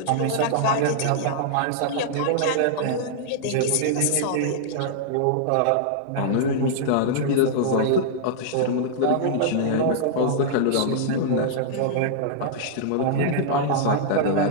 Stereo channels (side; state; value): both; different; correlation -0.02